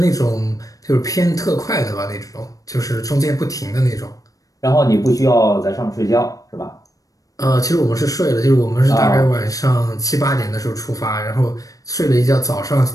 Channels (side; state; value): right; late; 0.17 ms